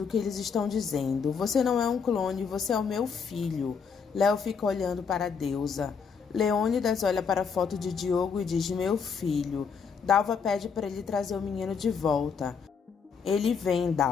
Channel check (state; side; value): quieter; right; 6.0 dB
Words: que eles estão dizendo. Você não é um clone, você é o meu filho. Léo fica olhando para a Deusa. Leônidas olha para a foto de Diogo e diz, meu filho. Dalva pede para ele trazer o menino de volta. Ele vem,